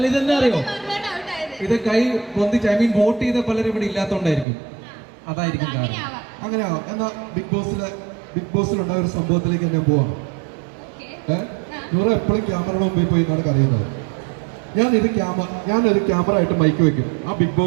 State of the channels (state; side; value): drops out; left; at 4.5 s